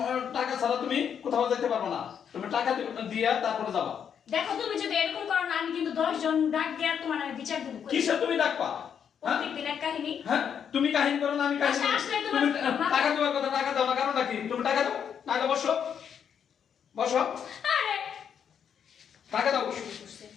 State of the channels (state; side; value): quieter; right; 8.0 dB